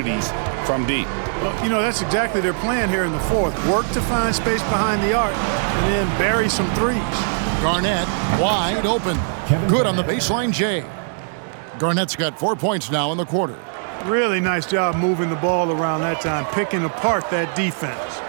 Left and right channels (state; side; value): silent; left; 65 dB below the other